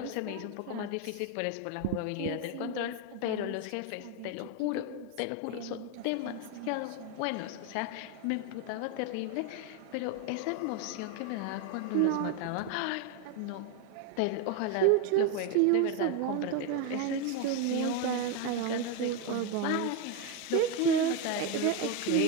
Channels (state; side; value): different; both; correlation 0.02